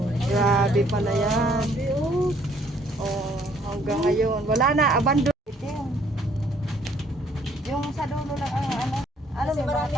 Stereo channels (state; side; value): normal; both; correlation 0.64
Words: Grabe pala yan. Oh, hanggang ngayon. Wala na, abandon. Yung sa dulo lang ang ano. Ano, may mga